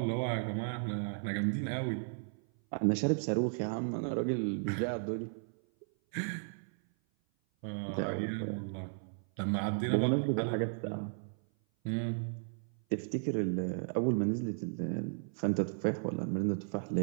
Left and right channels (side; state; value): left; silent; 55 dB below the other